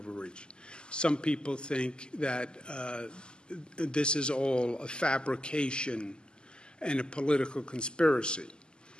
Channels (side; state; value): right; late; 0.048 ms